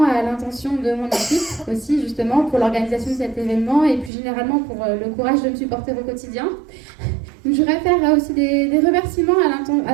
à l'intention de mon équipe aussi, justement, pour l'organisation de cet événement et plus généralement pour le courage de me supporter au quotidien. Donc, je voudrais faire aussi des remerciements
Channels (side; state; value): left; drops out; at 4.1 s